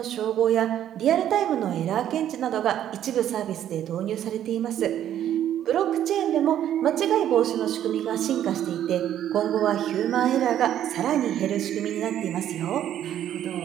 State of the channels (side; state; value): left; quieter; 11.0 dB